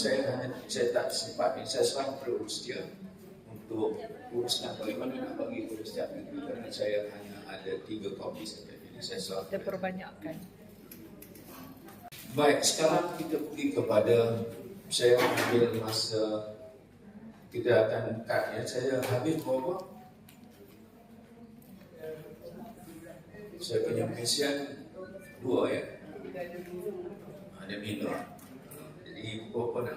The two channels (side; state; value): both; identical; correlation 1.00